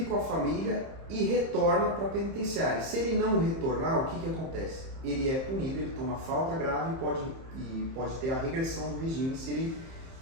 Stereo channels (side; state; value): left; late; 30 ms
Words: com a família e retorna para a penitenciária. Se ele não retornar, o que acontece? Ele é punido, ele toma falta grave e pode ter a regressão do regime